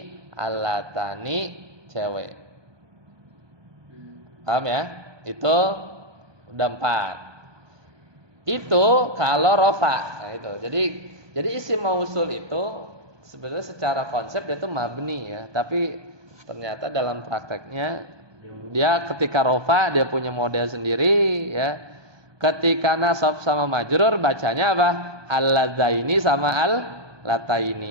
allatani cewek. Paham ya? Itu udah 4. Itu kalau rofa. Nah, itu. Jadi isim mausul itu sebenarnya secara konsep dia itu mabni ya, tapi ternyata dalam prakteknya dia ketika rofa dia punya model sendiri ya. Ketika nasab sama majrur bacanya apa? Alladzaini sama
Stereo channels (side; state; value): left; late; 1.2 ms